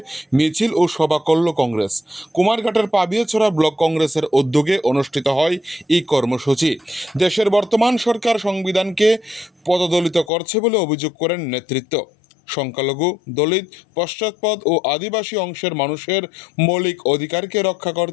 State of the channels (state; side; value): drops out; right; at 10.3 s